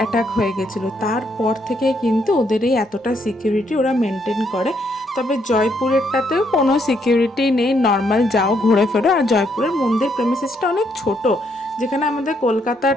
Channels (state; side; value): normal; both; correlation 0.74